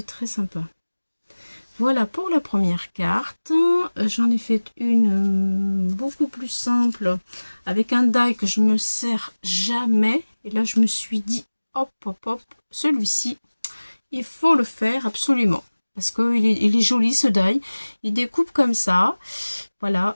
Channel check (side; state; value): both; inverted; correlation -1.00